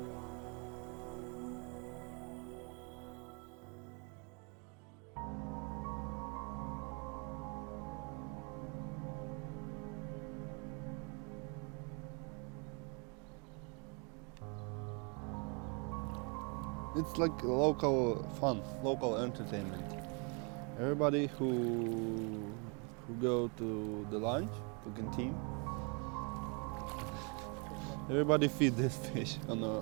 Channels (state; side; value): quieter; left; 34.5 dB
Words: It's like local fun, local entertainment. Everybody who go to the lunch, to canteen, everybody feed this fish on